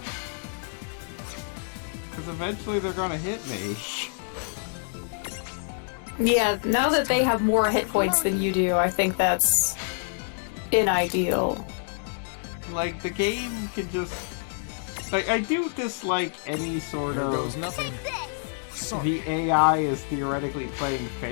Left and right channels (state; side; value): silent; right; 60 dB below the other